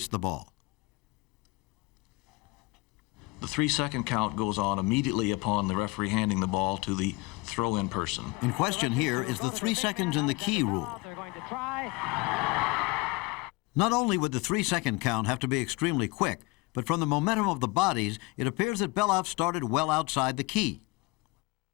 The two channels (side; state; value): right; quieter; 24.1 dB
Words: the ball. The 3-second count goes on immediately upon the referee handing the ball to the throw-in person. In question here is the 3 seconds in the key rule. They're going to try. Not only would the 3-second count have to be extremely quick, but from the momentum of the bodies, it appears that Belov started well outside the key.